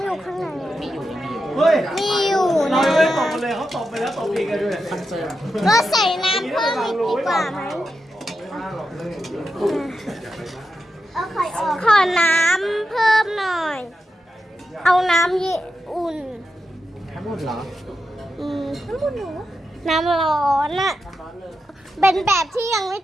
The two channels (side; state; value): both; normal; correlation 0.88